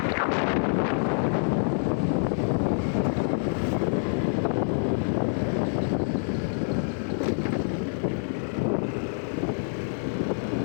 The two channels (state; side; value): silent; right; digital silence